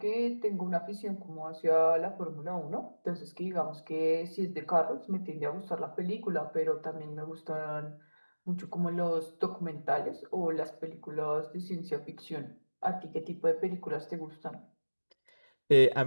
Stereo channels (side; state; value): both; inverted; correlation -1.00